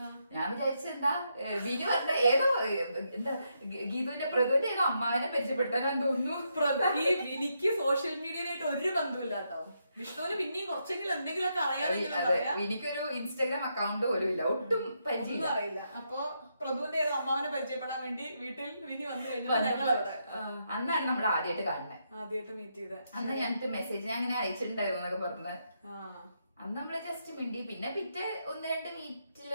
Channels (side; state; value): both; inverted; correlation -0.80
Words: ഞാൻ വിചാരിച്ചെന്താ വിനി പറഞ്ഞ ഏതോ എന്താ ഗീതുവിന്റെ പ്രതുവിന്റെ ഏതോ അമ്മാവിനെ പരിചയപ്പെടുത്താനാന്ന് തോന്നുന്നു. ഈ വിനിക്ക് സോഷ്യൽ മീഡിയയിലായിട്ട് ഒരു ബന്ധമില്ല കേട്ടോ. വിഷ്ണുവിന് പിന്നെയും കുറച്ചെങ്കിലും എന്തെങ്കിലുമൊക്കെ അറിയാമെങ്കിലും എനിക്കൊരു ഇൻസ്റ്റാഗ്രാം അക്കൗണ്ട് പോലും ഇല്ല, ഒട്ടും പരിചയം അറിയില്ല. അപ്പൊ പ്രഭുവിന്റെ ഏത് അമ്മാവനെ പരിചയപ്പെടാൻ വേണ്ടി വീട്ടിൽ വിനി വന്നു കഴിഞ്ഞാൽ ഞങ്ങൾ അവിടെ അന്നാണ് നമ്മൾ ആദ്യമായിട്ട് കാണുന്നത്, ആദ്യമായിട്ട് മീറ്റ് ചെയ്ത. അന്ന് ഞങ്ങൾക്ക് മെസ്സേജ് ഞാൻ അങ്ങനെ അയച്ചിട്ടുണ്ടായിരുന്നു എന്നൊക്കെ പറഞ്ഞത്. അന്ന് നമ്മള് ജസ്റ്റ് മിണ്ടി. പിന്നെ പിറ്റേ 1-2